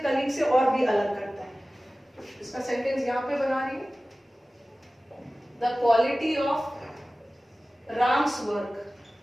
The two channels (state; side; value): normal; both; correlation 0.97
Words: से और भी अलग करता है। इसका सेंटेंस यहाँ पे बना रही है, the quality of Ram's work,